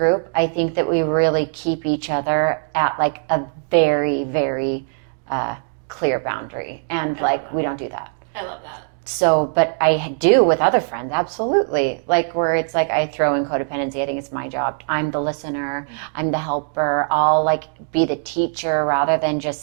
I think that we really keep each other at, like, a very, very clear boundary, and we don't do that. I love that. So, but I do with other friends, absolutely. Like, where it's like I throw in codependency, I think it's my job. I'm the listener, I'm the helper. I'll, like, be the teacher rather than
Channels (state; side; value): silent; left; digital silence